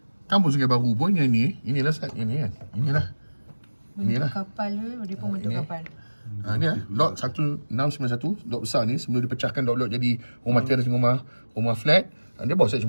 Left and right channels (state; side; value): inverted; both; correlation -1.00